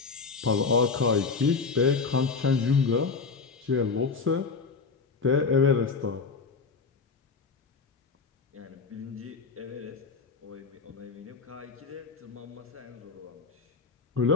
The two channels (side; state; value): right; quieter; 4.8 dB